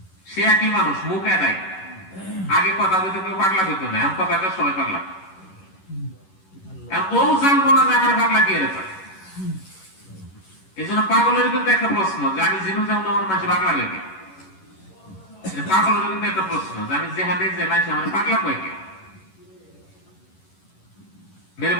সে একই মানুষ, মুখ এদাই। আগে কথা বলতে কেউ পাগলা হইতো না, এখন কথা সবাই পাগলা। ও জানবো না যে আমার পাগলা কি এর। এই জন্য পাগলের কিন্তু একটা প্রশ্ন যে আমি জিনু যাবো না, আমার মানুষ পাগলা হয়ে গে। পাগলের কিন্তু একটা প্রশ্ন যে আমি যেখানে যে মানুষ আমার পাগলা হয়ে গে। মেরে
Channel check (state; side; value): late; right; 11 ms